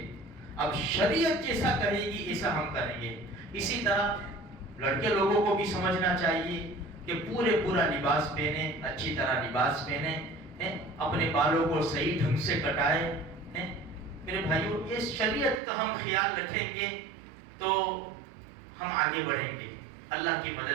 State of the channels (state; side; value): drops out; left; at 15.6 s